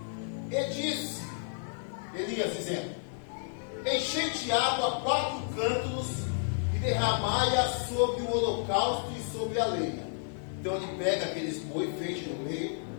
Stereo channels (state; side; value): silent; right; 57 dB below the other